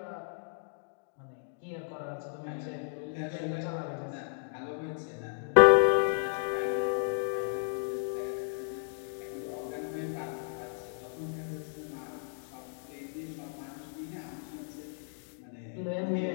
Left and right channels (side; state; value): right; silent; digital silence